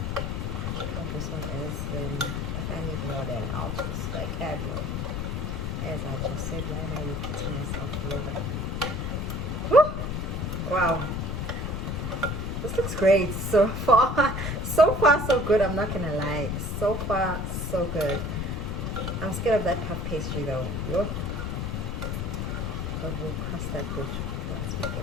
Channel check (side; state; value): left; noise; rumble, 2 dB below the sound